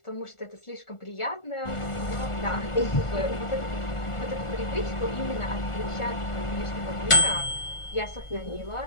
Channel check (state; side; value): late; right; 1.4 ms